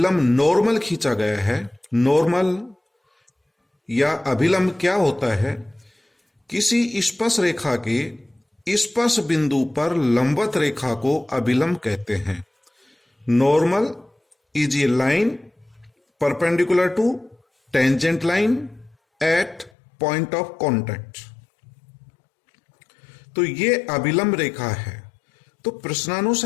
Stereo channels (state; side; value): drops out; right; at 19.7 s